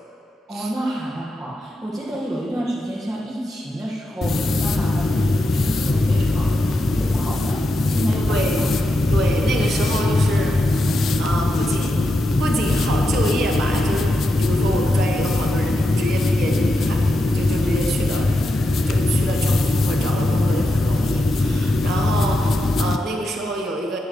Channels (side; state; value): both; normal; correlation 0.86